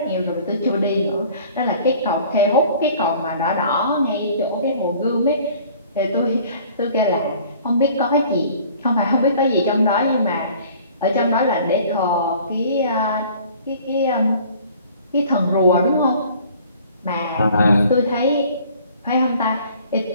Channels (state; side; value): inverted; both; correlation -0.51